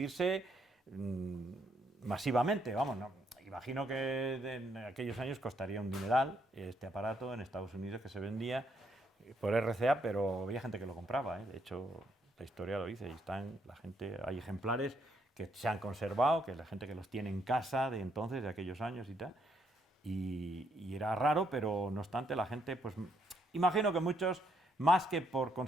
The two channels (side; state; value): both; normal; correlation 0.73